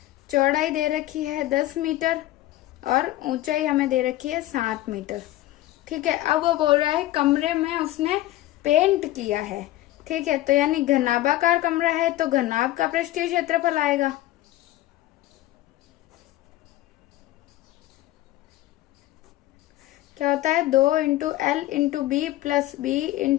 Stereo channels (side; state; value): right; quieter; 15.6 dB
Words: चौड़ाई दे रखी है 10 मीटर और ऊंचाई हमें दे रखी है 7 मीटर। ठीक है, अब वो बोल रहा है कमरे में उसने पेंट किया है। ठीक है, तो यानी घनाभाकार कमरा है तो घनाभ का पृष्ठीय क्षेत्रफल आएगा। क्या होता है, 2 into L into B plus B